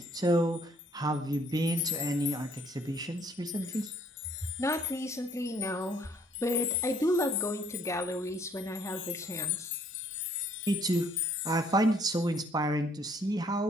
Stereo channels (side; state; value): both; normal; correlation 0.64